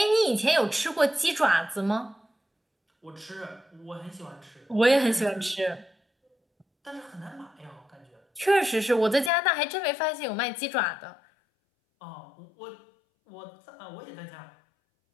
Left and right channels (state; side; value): drops out; right; at 9.3 s